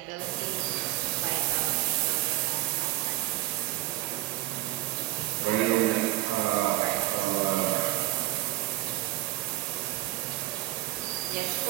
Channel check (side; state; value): left; quieter; 17.5 dB